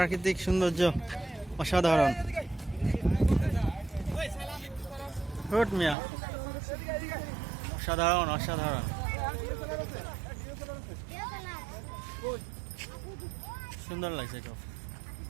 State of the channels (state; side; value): drops out; left; at 6.0 s